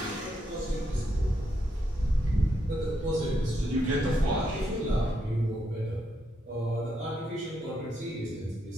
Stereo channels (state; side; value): normal; both; correlation 0.79